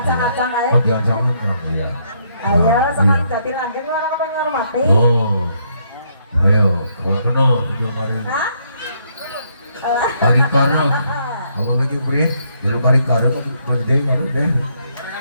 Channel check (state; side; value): inverted; both; correlation -0.72